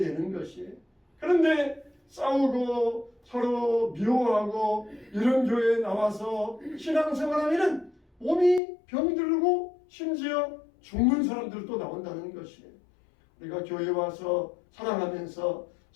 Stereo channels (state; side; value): drops out; right; at 8.6 s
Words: 것이에요. 그런데 싸우고 서로 미워하고 이런 교회에 나와서 신앙생활하면 몸이 병들고 심지어 죽는 사람들도 나온다는 것이에요. 우리가 교회에 와서 사랑하면서